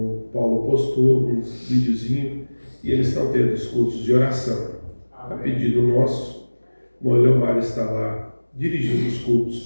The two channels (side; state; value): both; inverted; correlation -1.00